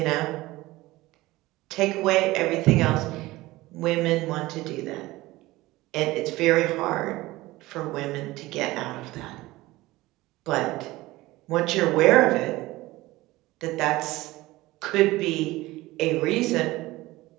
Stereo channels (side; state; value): left; quieter; 18.9 dB